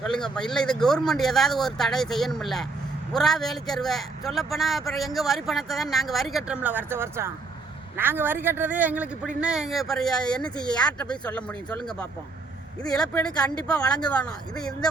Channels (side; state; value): left; quieter; 3.9 dB